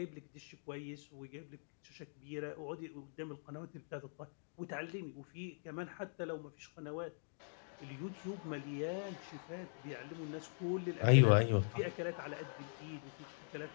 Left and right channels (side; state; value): right; silent; digital silence